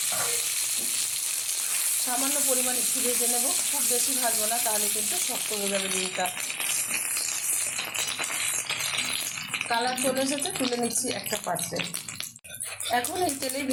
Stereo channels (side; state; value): both; identical; correlation 1.00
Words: সামান্য পরিমাণ একটু ভেজে নেব, খুব বেশি ভাজবো না, তাহলে কিন্তু শক্ত হয়ে যাবে ডিমটা। কালার চলে এসেছে, তুলে নিচ্ছি একটা পাত্রে। এখন এই তেলেই